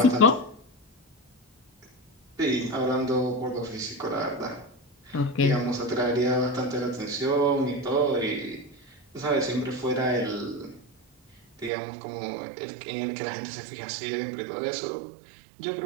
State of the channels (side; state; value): left; drops out; at 11.7 s